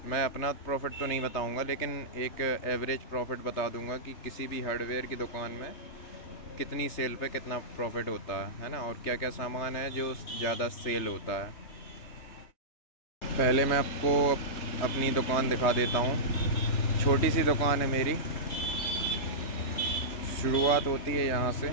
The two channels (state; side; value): late; right; 3.2 ms